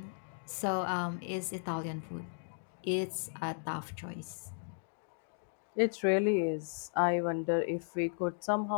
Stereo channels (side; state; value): right; silent; digital silence